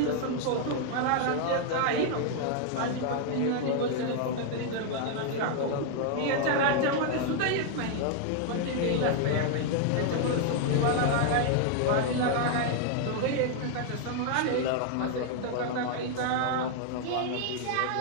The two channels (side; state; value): both; different; correlation 0.00